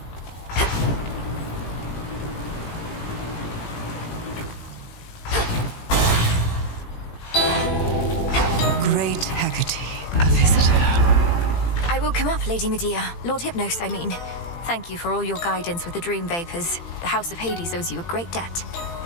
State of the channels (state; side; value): late; right; 18 ms